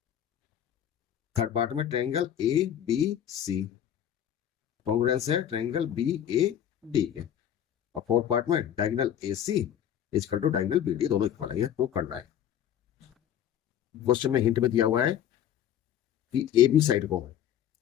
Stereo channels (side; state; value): right; quieter; 10.1 dB